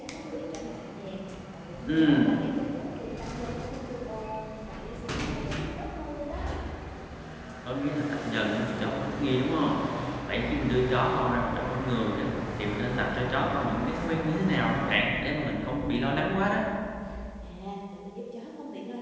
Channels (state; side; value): identical; both; correlation 1.00